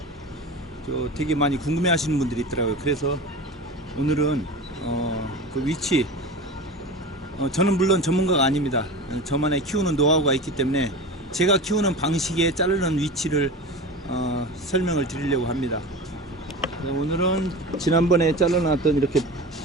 되게 많이 궁금해 하시는 분들이 있더라고요. 그래서 오늘은 그 위치, 저는 물론 전문가가 아닙니다. 저만의 키우는 노하우가 있기 때문에 제가 키우는 방식에 자르는 위치를 설명을 드리려고 합니다. 오늘은 지난번에 잘라놨던 이렇게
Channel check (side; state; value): both; normal; correlation 0.31